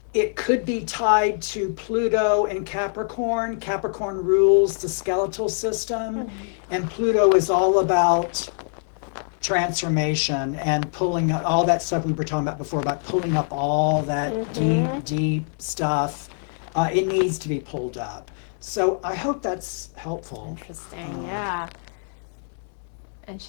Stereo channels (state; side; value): silent; right; 59 dB below the other